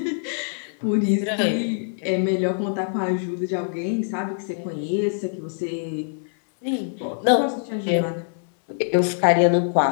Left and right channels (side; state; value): right; silent; digital silence